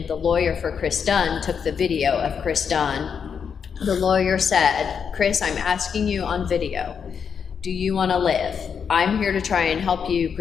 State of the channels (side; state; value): right; quieter; 6.8 dB